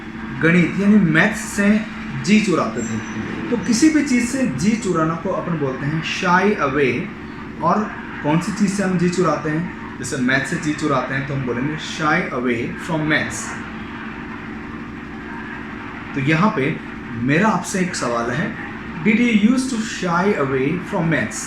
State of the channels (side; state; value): both; identical; correlation 1.00